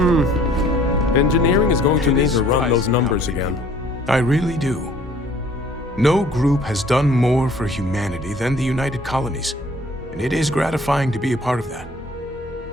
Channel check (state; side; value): normal; both; correlation 0.55